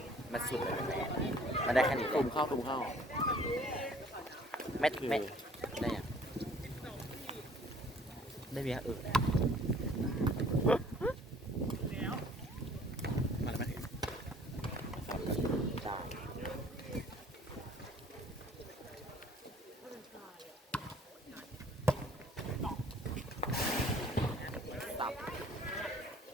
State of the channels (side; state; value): both; normal; correlation 0.55